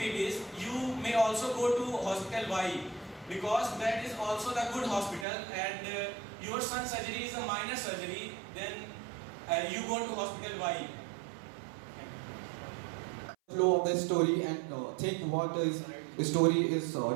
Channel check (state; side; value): drops out; left; at 5.2 s